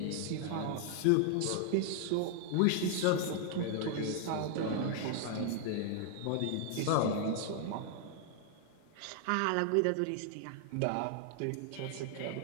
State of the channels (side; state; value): both; different; correlation 0.00